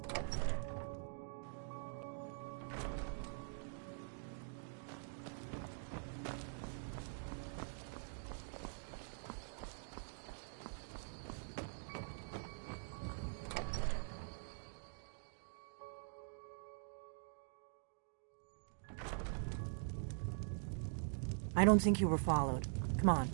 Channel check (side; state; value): left; silent; digital silence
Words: I don't think you were followed. Come on,